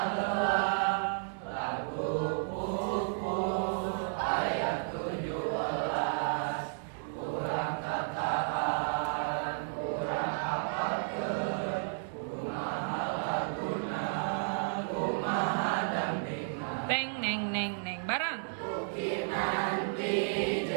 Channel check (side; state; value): left; silent; digital silence